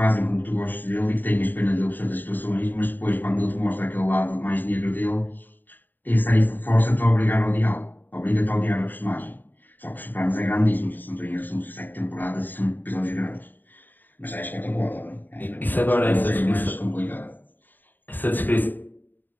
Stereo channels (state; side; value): late; right; 0.089 ms